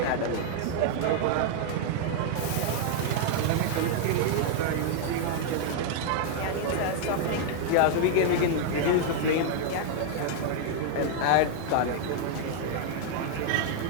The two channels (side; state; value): both; different; correlation 0.00